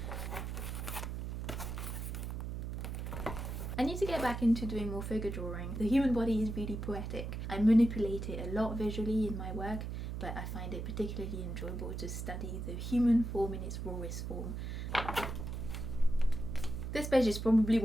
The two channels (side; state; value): right; noise; hum, 5 dB below the sound